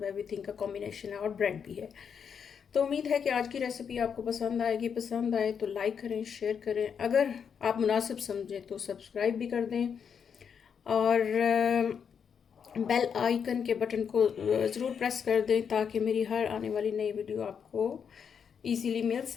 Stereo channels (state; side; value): quieter; right; 7.1 dB